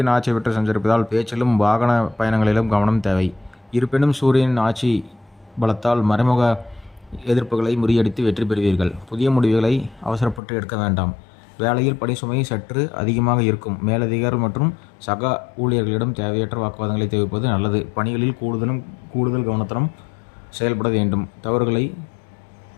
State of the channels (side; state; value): right; drops out; at 10.4 s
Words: ஆட்சி பெற்று சஞ்சரிப்பதால் பேச்சிலும் வாகன பயணங்களிலும் கவனம் தேவை. இருப்பினும் சூரியன் ஆட்சி பலத்தால் மறைமுக எதிர்ப்புகளை முறியடித்து வெற்றி பெறுவீர்கள். புதிய முடிவுகளை அவசரப்பட்டு எடுக்க வேண்டாம். வேலையில் பணி சுமை சற்று அதிகமாக இருக்கும். மேலதிகாரிகள் மற்றும் சக ஊழியர்களிடம் தேவையற்ற வாக்குவாதங்களை தவிர்ப்பது நல்லது. பணிகளில் கூடுதல் கவனத்துடன் செயல்பட வேண்டும். தவறுகளை